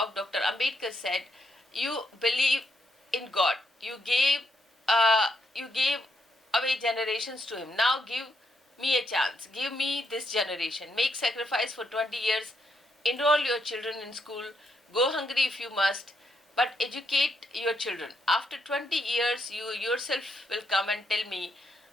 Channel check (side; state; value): both; normal; correlation 0.78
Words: Dr. Ambedkar said, you believe in God. You gave away generations to him. Now give me a chance. Give me this generation. Make sacrifice for 20 years. Enroll your children in school. Go hungry if you must, but educate your children. After 20 years, you yourself will come and tell me